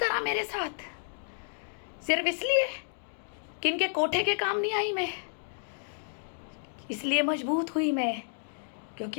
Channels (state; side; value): silent; right; digital silence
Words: मेरे साथ, सिर्फ इसलिए कि इनके कोठे के काम नहीं आई मैं, इसलिए मजबूत हुई मैं।